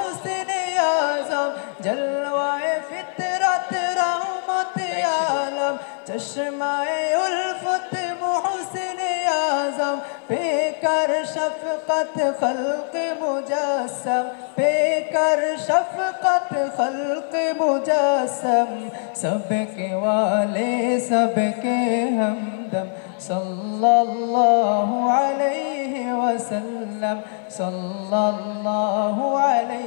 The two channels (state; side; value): silent; right; 64 dB below the other